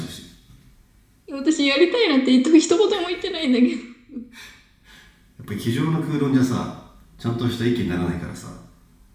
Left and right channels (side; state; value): both; identical; correlation 1.00